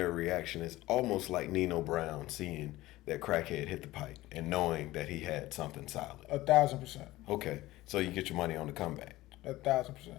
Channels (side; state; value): right; quieter; 17.6 dB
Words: reaction is almost like Nino Brown seeing that Crackhead hit the pipe and knowing that he had something solid. 1,000%. Okay, so you get your money on the comeback.